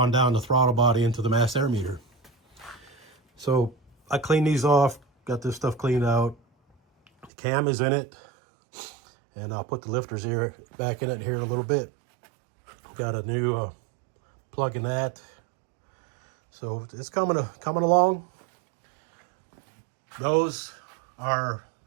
down the throttle body into the mass air meter. So I cleaned these off, got this stuff cleaned out. The cam is in it, and I'll put the lifters here back in it here in a little bit. Got a new plug in that. So it's coming along. Those are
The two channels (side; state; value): left; drops out; at 7.3 s